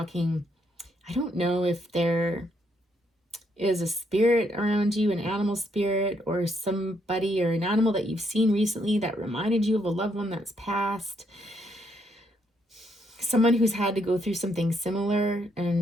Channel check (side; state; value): both; normal; correlation 0.74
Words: I don't know if there is a spirit around you, an animal spirit, or somebody or an animal that you've seen recently that reminded you of a loved one that's passed. Someone who's had to go through something similar.